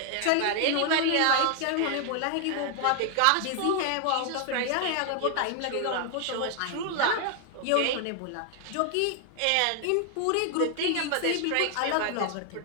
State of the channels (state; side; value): different; both; correlation 0.00